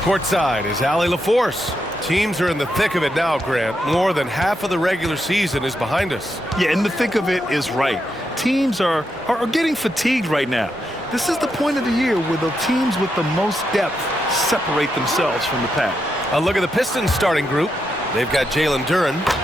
is Allie LaForce. Teams are in the thick of it now, Grant. More than half of the regular season is behind us. Yeah, in the thick of it is right. Teams are getting fatigued right now. This is the point of the year where the teams with the most depth separate themselves from the pack. A look at the Pistons starting group. They've got Jalen Duren,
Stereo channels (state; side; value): normal; both; correlation 0.83